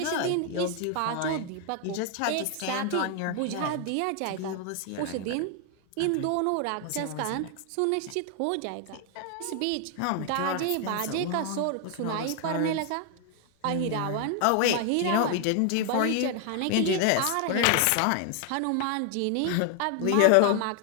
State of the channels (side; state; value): both; different; correlation 0.00